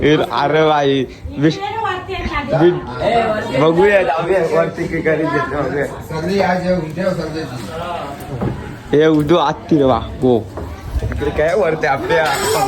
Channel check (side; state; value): both; identical; correlation 1.00